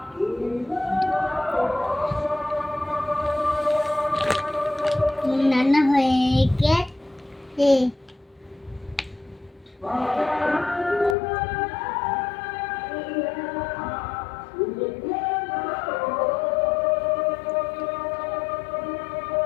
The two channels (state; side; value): drops out; right; at 11.2 s